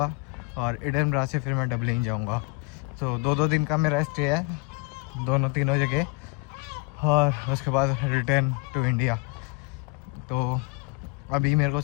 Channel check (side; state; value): right; quieter; 26.4 dB